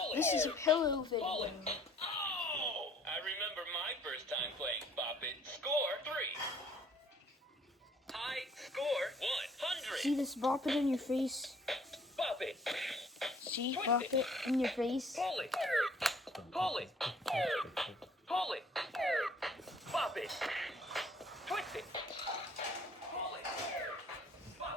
This is a pillow video. Oh! I remember my first time playing Bop It. Score 3. High score 100. See this bop it in your face? Bop it. See, Twist bop it. it in your face. Pull it. Pull it. Pull it. Bop it. Twist it. Pull it.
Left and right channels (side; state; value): both; normal; correlation 0.58